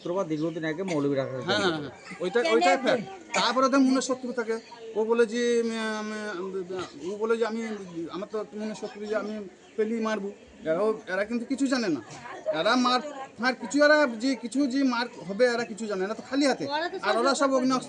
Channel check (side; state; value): both; identical; correlation 1.00